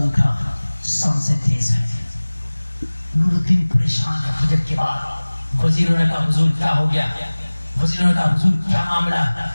اٹھا سانسیں تیز ہیں. نور الدین پریشان ہے. فجر کے بعد وزیروں نے کہا حضور کیا ہو گیا؟ وزیروں نے کہا حضور کیا معاملہ؟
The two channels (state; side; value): inverted; both; correlation -1.00